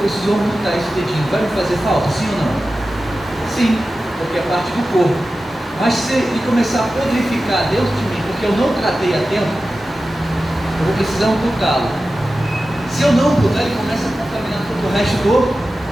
preciso amputar esse dedinho. Vai me fazer falta, sim ou não? Sim, porque é parte do corpo. Mas se ele começar a podrificar dentro de mim, porque eu não tratei a tempo, eu vou precisar amputá-lo. Se eu não amputar, ele começa a contaminar todo o resto do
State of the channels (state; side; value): normal; both; correlation 0.94